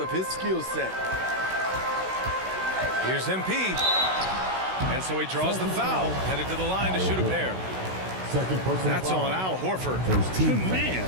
his skill set. Here's MP. And so he draws the foul, headed to the line to shoot a pair. That's on Al Horford. Man,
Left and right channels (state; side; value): late; left; 16 ms